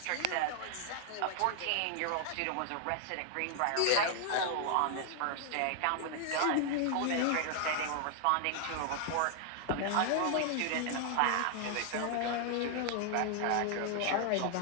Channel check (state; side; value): different; both; correlation 0.00